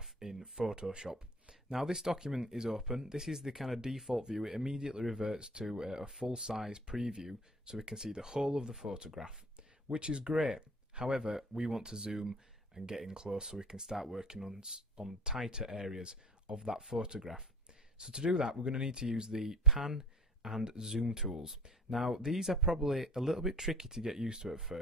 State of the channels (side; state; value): both; normal; correlation 0.46